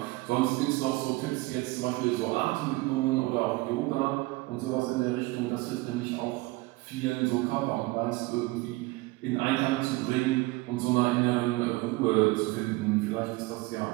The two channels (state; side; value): quieter; left; 21.9 dB